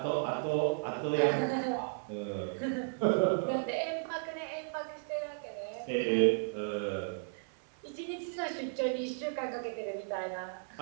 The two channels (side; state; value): left; silent; digital silence